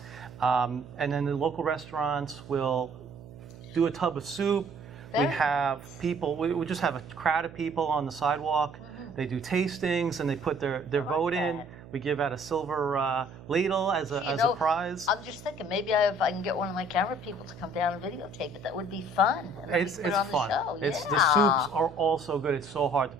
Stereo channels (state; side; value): noise; right; hum, 18 dB below the sound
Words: And then the local restaurants will do a tub of soup. We Very have people, we just have a crowd of people on the sidewalk. They do tastings and they put their vote in. that. We give out a silver ladle as a prize. I'm just thinking, maybe if I can get one of my camera people to come down and videotape it, that would be fun. And then It's we put it on the fun. show. The Yeah. soups are all so good. It's so hard to